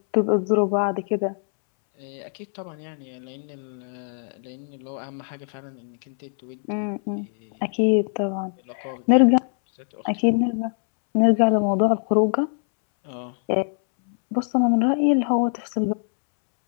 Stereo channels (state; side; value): silent; right; 63 dB below the other